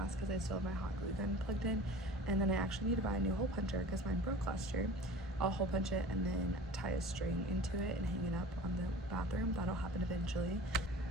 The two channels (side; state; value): both; normal; correlation 0.39